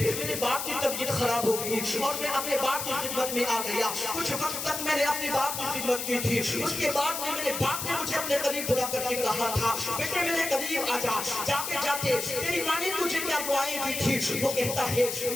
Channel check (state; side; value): noise; left; hiss, 4 dB below the sound